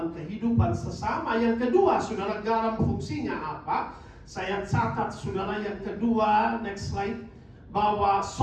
kehidupan sesama. Yang kedua, saudara, garam fungsinya apa? Saya catat, saudara, yang kedua, next slide, bahwa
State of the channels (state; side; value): identical; both; correlation 1.00